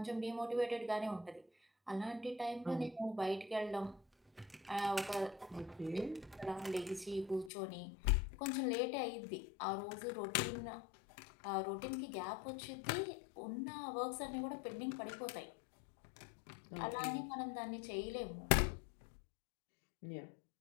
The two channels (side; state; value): right; drops out; at 7.5 s